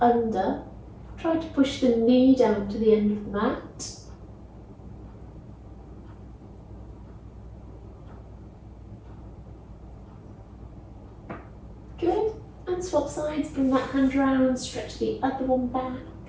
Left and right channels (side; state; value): both; identical; correlation 1.00